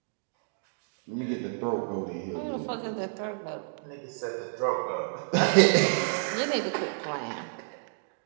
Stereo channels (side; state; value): left; silent; digital silence